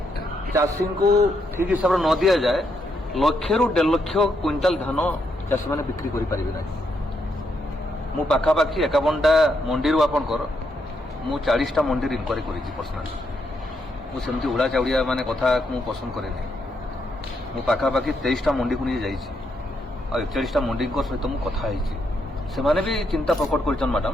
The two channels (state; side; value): normal; both; correlation 0.78